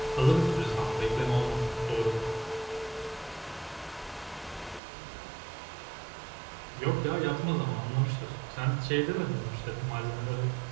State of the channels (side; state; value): left; drops out; at 4.8 s